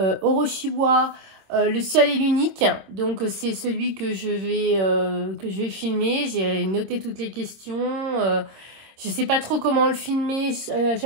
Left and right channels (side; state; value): left; late; 26 ms